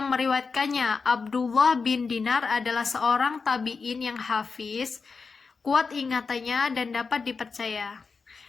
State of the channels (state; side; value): quieter; right; 4.8 dB